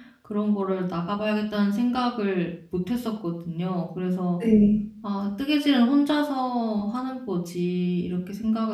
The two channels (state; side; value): identical; both; correlation 1.00